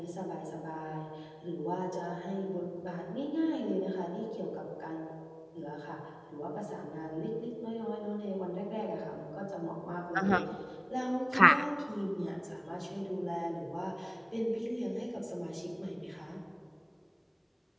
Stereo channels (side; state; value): both; identical; correlation 1.00